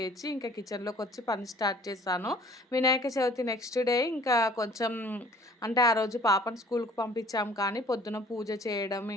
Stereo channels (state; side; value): normal; both; correlation 0.53